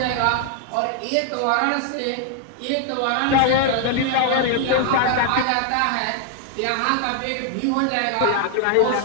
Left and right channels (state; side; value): different; both; correlation 0.00